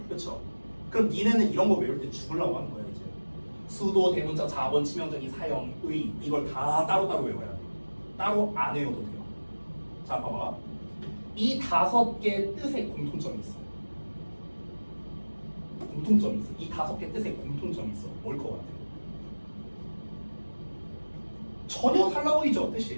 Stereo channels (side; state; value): both; inverted; correlation -1.00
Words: 그쵸? 그럼 니네는 이런 거 외울 때 죽으려고 하는 거야, 이제. 수도, 대문자, 자본, 치명적인, 사형, 의, 이걸 다 따로따로 외워야 돼. 따로 안 외워도 돼요. 자, 봐봐. 이 5개 뜻에 공통점이 있어. 공통점이 있어. 이 5개 뜻에 공통점이 있어. 뭘 것 같아? 전혀 달라 보이죠,